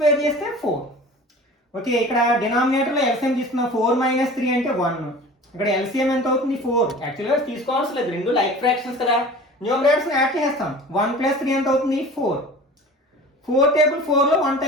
చేస్తే 4. ఓకే, ఇక్కడ డినామినేటర్లో ఎల్సిఎం తీసుకున్నాం. 4 మైనస్ 3 అంటే 1. ఇక్కడ ఎల్సిఎం ఎంత అవుతుంది, 4. యాక్చువల్గా తీసుకోవాల్సిన లేదు, రెండు లైక్ ఫ్రాక్షన్స్ కదా. న్యూమరేటర్స్ని యాడ్ చేస్తాం. 1 + 3 ఎంత అవుతుంది, 4. 4 టేబుల్ 4లో 1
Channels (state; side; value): normal; both; correlation 0.40